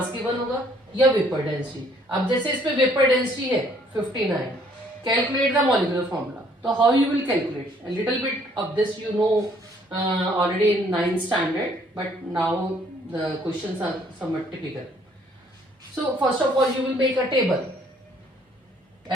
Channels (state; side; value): normal; both; correlation 0.63